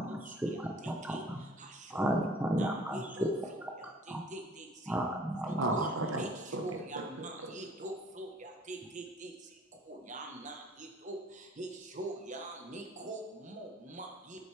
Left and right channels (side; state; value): both; normal; correlation 0.53